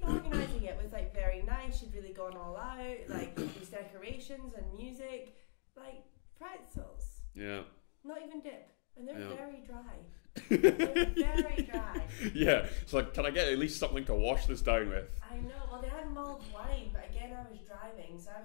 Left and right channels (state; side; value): silent; right; digital silence